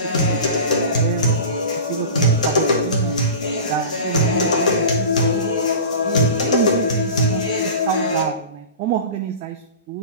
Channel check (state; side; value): inverted; both; correlation -0.34